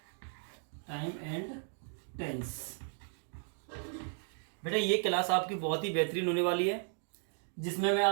Time and tense. बेटा ये class आपकी बहुत ही बेहतरीन होने वाली है, जिसमें मैं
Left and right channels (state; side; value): silent; left; 54 dB below the other